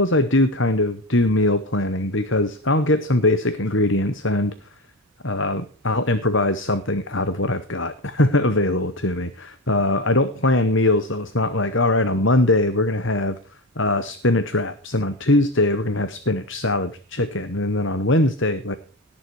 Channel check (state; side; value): normal; both; correlation 0.20